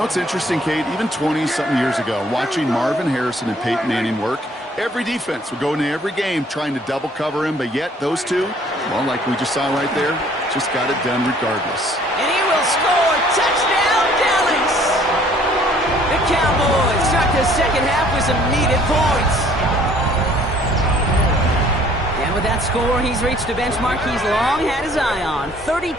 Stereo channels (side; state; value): both; normal; correlation 0.58